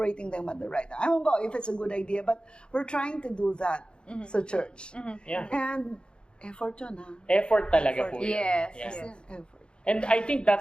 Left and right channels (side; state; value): right; late; 0.053 ms